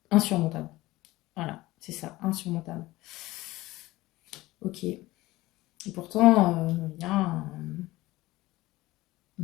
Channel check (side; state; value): right; quieter; 18.5 dB